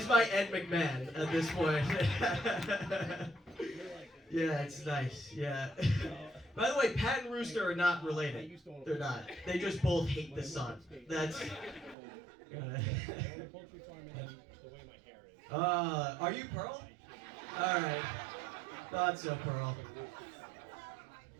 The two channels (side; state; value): left; drops out; at 12.0 s